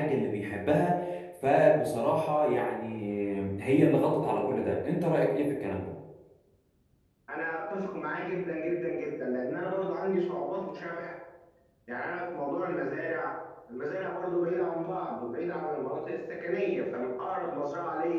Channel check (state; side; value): identical; both; correlation 1.00